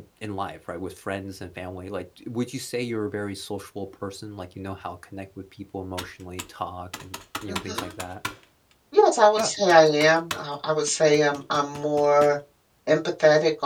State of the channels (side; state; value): both; identical; correlation 1.00